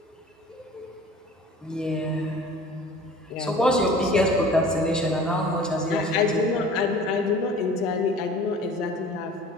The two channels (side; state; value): both; normal; correlation 0.45